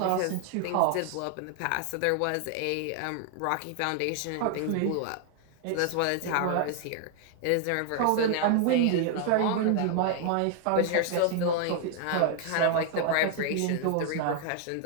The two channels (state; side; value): different; both; correlation 0.00